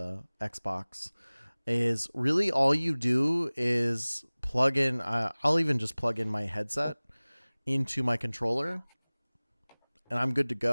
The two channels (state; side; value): inverted; both; correlation -1.00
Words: Xbox, is really all you do is plug in. I'll even just plug in my headset into my controller, and I'm good to